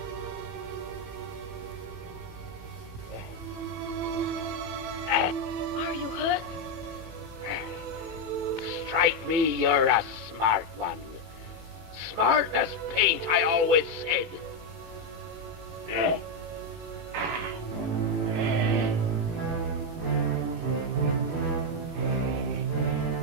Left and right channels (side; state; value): left; late; 18 ms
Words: Are you hurt? Strike me, you're a smart one. Smart as paint, I always said.